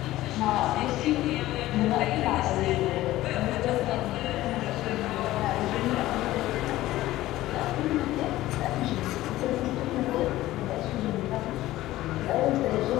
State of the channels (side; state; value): right; quieter; 16.0 dB